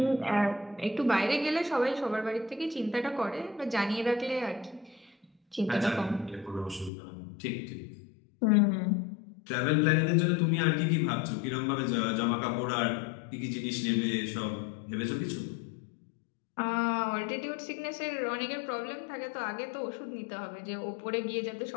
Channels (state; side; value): drops out; right; at 6.9 s